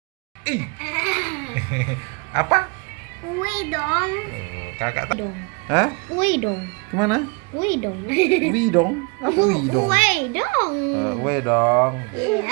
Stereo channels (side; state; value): left; quieter; 32.4 dB